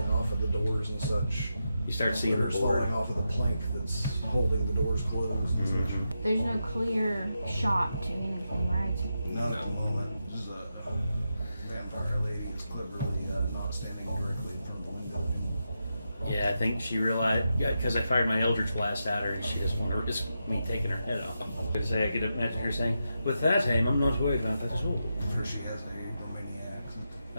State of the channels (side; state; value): both; inverted; correlation -0.86